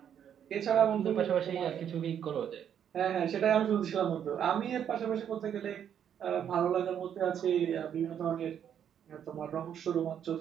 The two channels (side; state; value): left; quieter; 9.0 dB